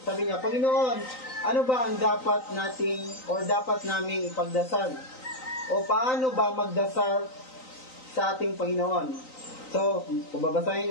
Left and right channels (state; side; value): late; right; 3.9 ms